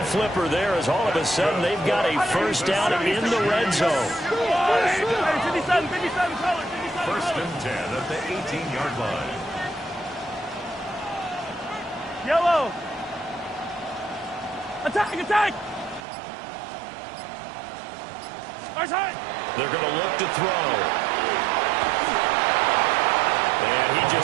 flipper there, as all of a sudden they've got a first down in the red zone. 57, 57, 1st and 10 at the 18-yard line. Yellow. Attack, attack. They're going to look to throw. And he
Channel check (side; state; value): left; drops out; at 16.0 s